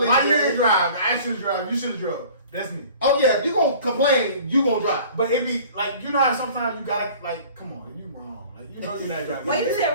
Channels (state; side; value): inverted; both; correlation -0.47